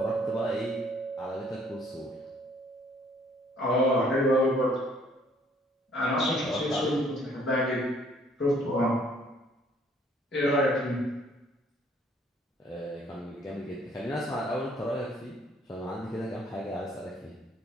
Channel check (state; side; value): normal; both; correlation 0.62